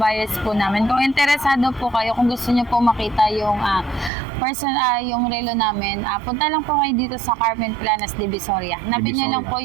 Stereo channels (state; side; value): drops out; left; at 4.1 s